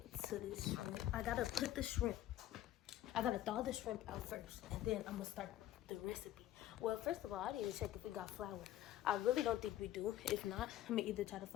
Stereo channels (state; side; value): quieter; right; 13.3 dB